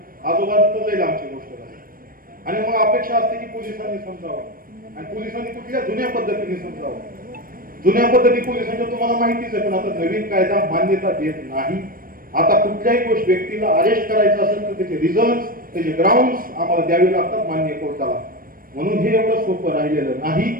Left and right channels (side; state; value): left; late; 0.41 ms